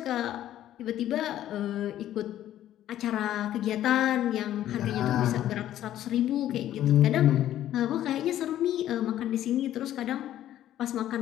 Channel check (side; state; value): right; quieter; 12.3 dB